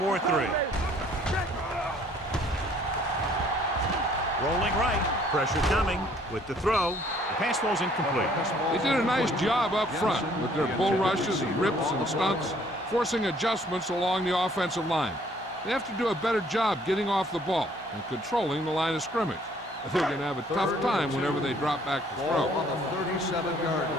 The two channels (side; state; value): both; normal; correlation 0.60